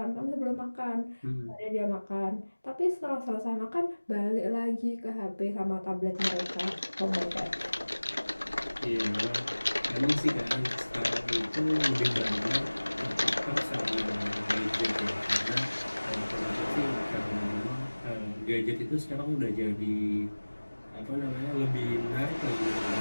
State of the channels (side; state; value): both; inverted; correlation -1.00